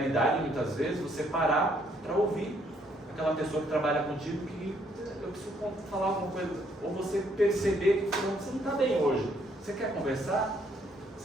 muitas vezes, você parar para ouvir aquela pessoa que trabalha contigo que eu preciso falar alguma coisa, ou você perceber que você não está bem hoje. Você quer conversar?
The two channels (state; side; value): normal; both; correlation 0.69